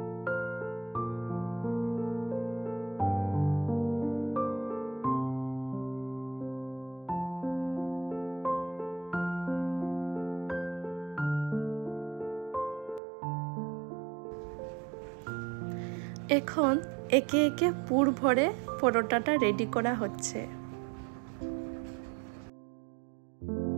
এখন একে একে পুর ভরে পরোটাটা রেডি করা হচ্ছে।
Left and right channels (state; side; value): drops out; left; at 13.0 s